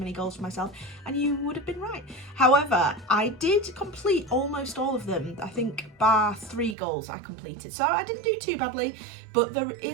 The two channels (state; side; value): drops out; left; at 6.8 s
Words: goals for myself, and you would have been right. However, I did complete almost all of them. I think bar 3 goals I completed, so I didn't do too badly, but there